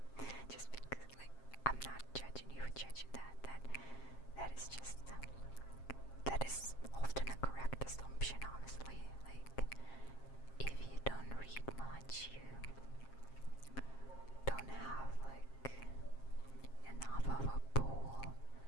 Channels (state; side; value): late; right; 7.5 ms